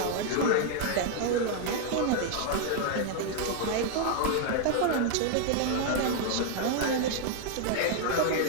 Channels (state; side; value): different; both; correlation 0.00